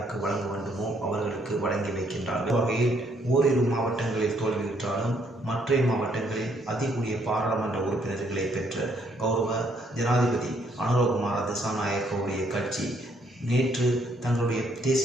வழங்க வேண்டுமோ அவர்களுக்கு வழங்கி வைக்கின்றார்கள். வகையில் ஓரிரு மாவட்டங்களில் தோல்வியுற்றாலும் மற்ற மாவட்டங்களில் அதிகூடிய பாராளுமன்ற உறுப்பினர்களை பெற்ற கௌரவ ஜனாதிபதி அனுரகுமார திசாநாயக்கவுடைய கட்சி நேற்று தங்களுடைய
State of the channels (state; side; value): normal; both; correlation 0.69